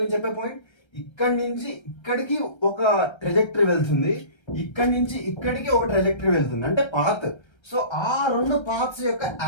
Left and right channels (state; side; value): late; right; 1.3 ms